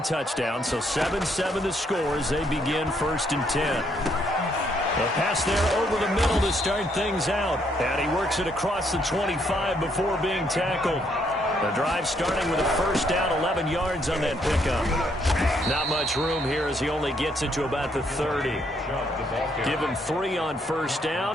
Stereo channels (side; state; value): both; normal; correlation 0.71